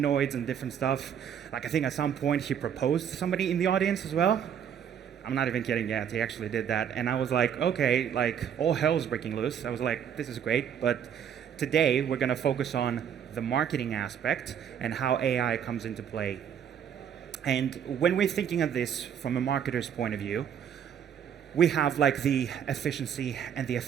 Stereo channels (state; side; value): quieter; left; 8.6 dB